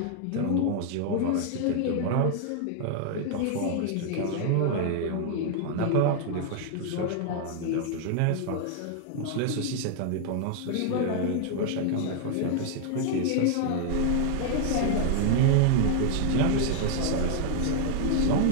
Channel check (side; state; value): both; different; correlation 0.00